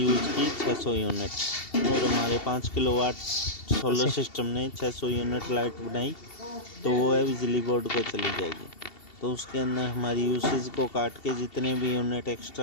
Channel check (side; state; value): right; late; 2.7 ms